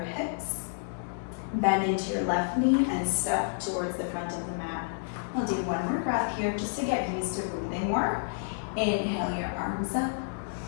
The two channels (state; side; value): silent; right; 58 dB below the other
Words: Bend into your left knee and step towards the front of the mat. We'll do one more breath here just to get used to breathing more. Inhale your arms up.